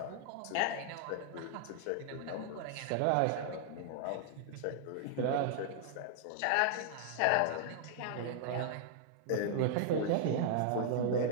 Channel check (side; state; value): both; different; correlation -0.01